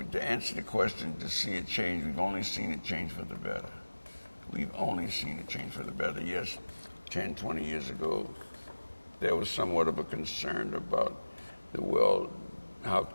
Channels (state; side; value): inverted; both; correlation -1.00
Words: to answer the question, to see it change, we've only seen it change for the better. We've only seen it change for the better. Yes, 10, 20 years ago, there was somewhat of a concern about how